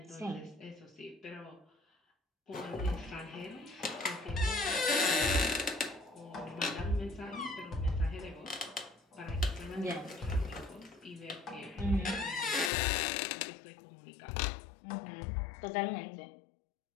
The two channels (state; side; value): drops out; right; at 12.7 s